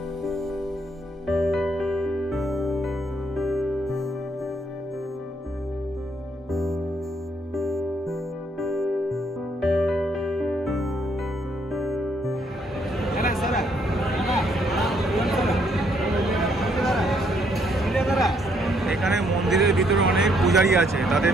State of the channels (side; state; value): both; normal; correlation 0.70